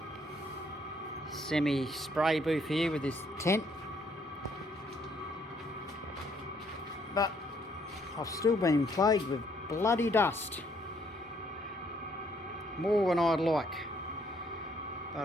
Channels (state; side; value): normal; both; correlation 0.68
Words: semi spray booth here with this tent, but I've still been plagued with bloody dust, more than I'd like,